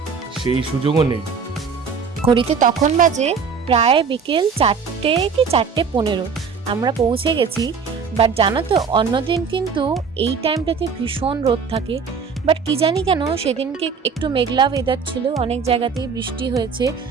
সেই সুযোগও নেই। ঘড়িতে তখন বাজে প্রায় বিকেল 4টে কি 4:15 আমরা পৌঁছে গেছি। বাট জানো তো অন্যদিন কিন্তু এই টাইমটাতে ভীষণ রোদ থাকে, বাট কি জানি কেন সেদিনকে একটু মেঘলা ওয়েদার ছিল, অনেক জায়গাতেই বৃষ্টি হয়েছে।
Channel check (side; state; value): left; quieter; 5.8 dB